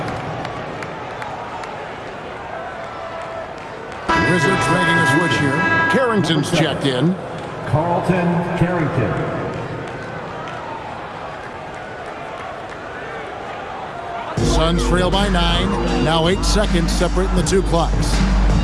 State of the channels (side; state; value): both; identical; correlation 1.00